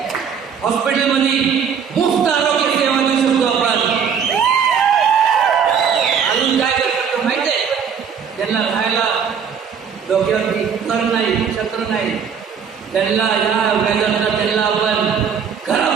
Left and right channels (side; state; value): left; quieter; 7.0 dB